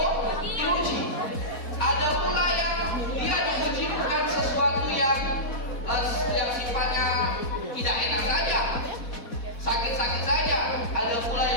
diuji. Ada pula yang dia diuji bukan sesuatu yang sifatnya tidak enak saja, sakit-sakit saja. Ada pula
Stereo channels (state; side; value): late; right; 4.1 ms